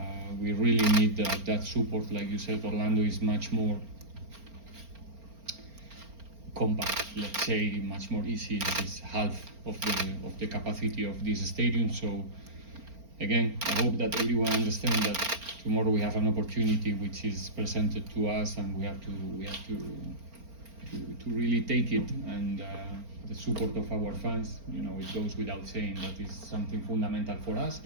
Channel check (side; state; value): left; late; 4.4 ms